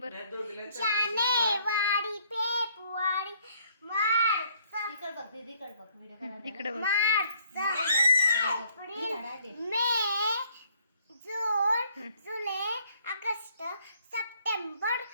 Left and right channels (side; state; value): both; inverted; correlation -0.64